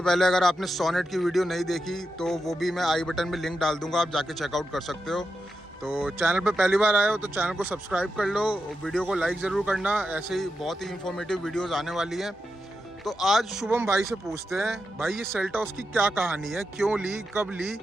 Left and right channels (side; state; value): both; normal; correlation 0.88